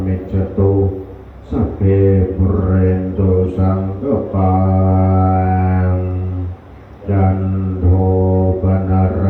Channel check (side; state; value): both; identical; correlation 1.00